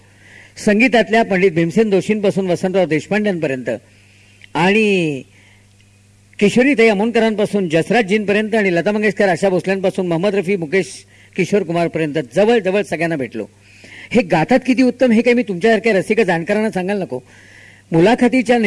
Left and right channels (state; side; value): identical; both; correlation 1.00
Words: संगीतातल्या पंडित भीमसेन जोशींपासून वसंतराव देशपांड्यांपर्यंत आणि किशोरीताई अमोणकरांपासून जसराजजींपर्यंत आणि लता मंगेशकर, आशा भोसल्यांपासून मोहम्मद रफी, मुकेश किशोर कुमारपर्यंत जवळजवळ सगळ्यांना भेटलो. हे गातात किती उत्तम हे काही मी तुमच्यासारख्या रसिक जाणकारांना सांगायला नको. मुलाखतीच्या